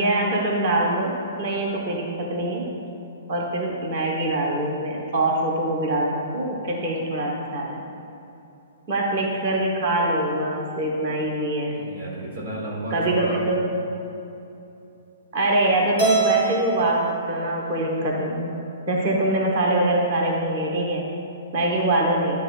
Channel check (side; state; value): both; inverted; correlation -0.36